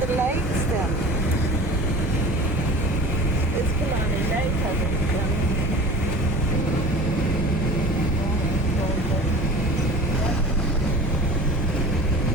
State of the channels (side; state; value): both; normal; correlation 0.38